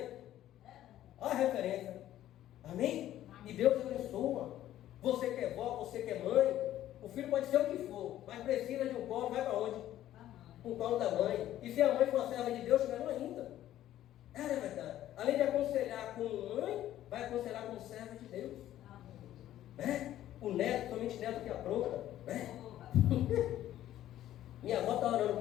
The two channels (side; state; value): right; quieter; 12.9 dB